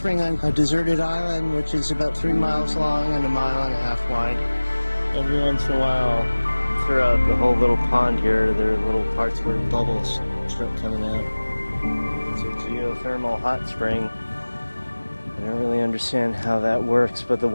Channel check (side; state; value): both; inverted; correlation -1.00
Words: on a deserted island, which is about 3 miles long and 1.5 miles wide. Every once in a while, throughout the whole little pond here, there are little parts where bubbles start coming out. It's a geothermal hot spring. I don't really understand how that works, but the